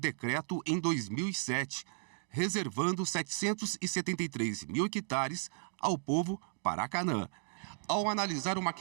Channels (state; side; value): silent; left; digital silence